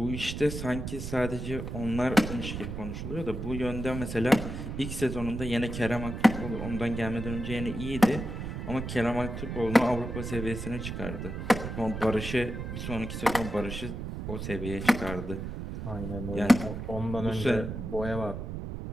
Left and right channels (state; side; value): noise; right; rumble, 6 dB below the sound